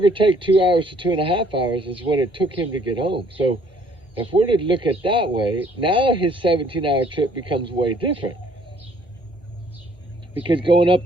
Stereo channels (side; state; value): both; normal; correlation 0.61